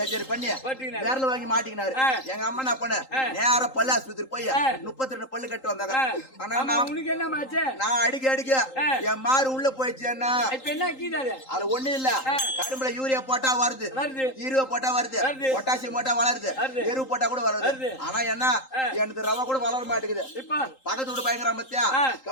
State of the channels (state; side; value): late; right; 3.8 ms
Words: பண்ணி விரல வாங்கி மாட்டிக்கினாரு. எங்க அம்மா என்ன பண்ண நேரா பல்லு ஆஸ்பத்திரி போய் 32 பல்லு கட்டு வந்தாங்க. ஆனா நான் அடிக்க என் மாறு உள்ள போயிடுச்சுன்னா இப்ப என்ன கீதாது அதுல ஒண்ணு இல்ல. கரும்புல யூரியா போட்டா வருது, ஈருவா போட்டா வருது, பொட்டாசியம் போட்டா வளருது, எரு போட்டா கூட வருது. ஆனா என்ன எனக்கு ரவா கூட வளர மாட்டேங்குது. பக்கத்து வீடு பயங்கர மத்தியா